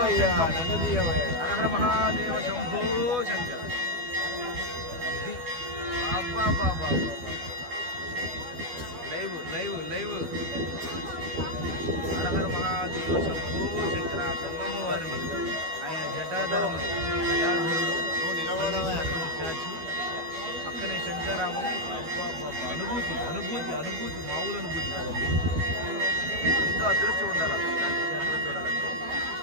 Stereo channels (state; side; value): late; left; 12 ms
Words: హరహర మహాదేవ శంభో శంకర. అబ్బా బాబా, లైవ్ హరహర మహాదేవ శంభో శంకర. గంగమ్మ వారిని ఆయన జటాధరుడు స్టాచ్యూ, పక్కనే శంకరామం. అనుభూతి మామూలు అనుభూతి కాదండి. ఎంతో అదృష్టం ఉండాలి క్షేత్రం చూడాలంటే.